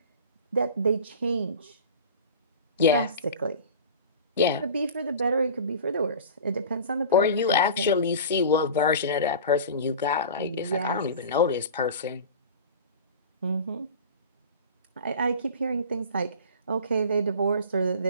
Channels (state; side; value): inverted; both; correlation -0.36